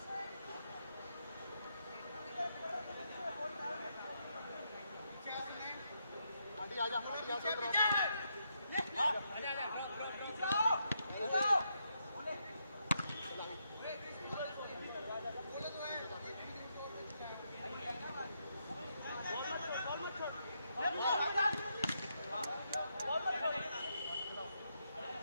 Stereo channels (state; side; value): inverted; both; correlation -0.80